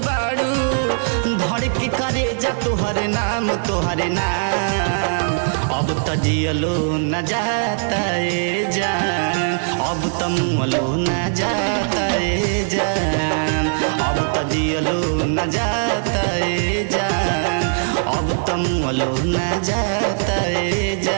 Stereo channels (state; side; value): silent; left; digital silence